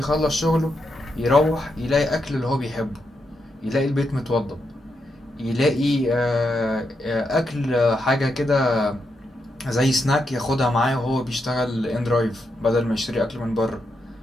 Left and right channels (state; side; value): normal; both; correlation 0.83